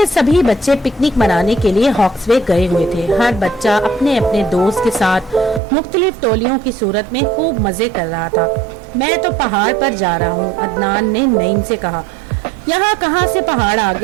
सभी बच्चे पिकनिक मनाने के लिए हॉक्सवे गए हुए थे। हर बच्चा अपने अपने दोस्त के साथ मुख्तलिफ टोलियों की सूरत में खूब मजे कर रहा था। मैं तो पहाड़ पर जा रहा हूँ, अदनान ने नईम से कहा। यहाँ कहाँ से पहाड़ आ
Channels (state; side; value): drops out; left; at 5.6 s